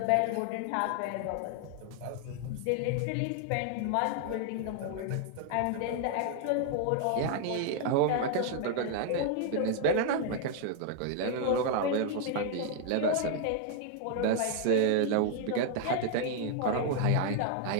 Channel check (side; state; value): both; different; correlation 0.00